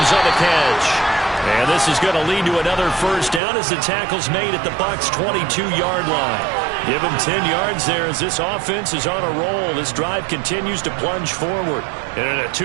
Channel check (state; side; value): drops out; left; at 3.4 s